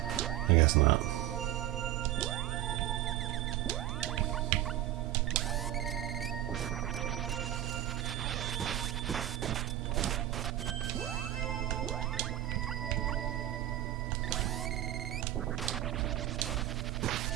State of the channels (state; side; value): quieter; left; 13.5 dB